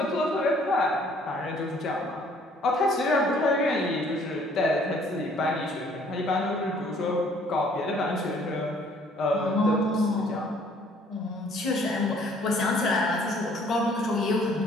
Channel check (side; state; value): both; normal; correlation 0.59